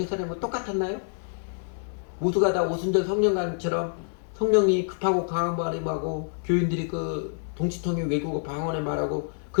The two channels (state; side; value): silent; right; digital silence